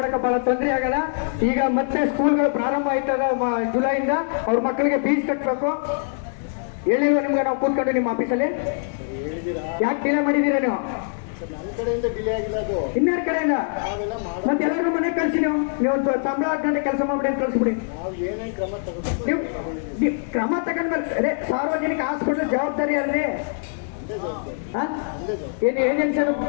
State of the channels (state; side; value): silent; right; digital silence